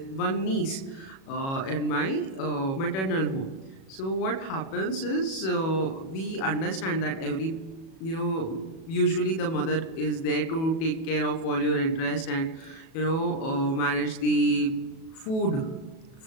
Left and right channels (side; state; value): right; late; 37 ms